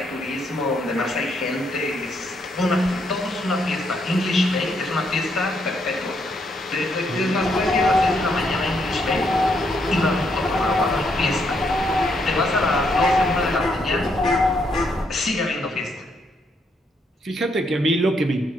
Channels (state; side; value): normal; both; correlation 0.75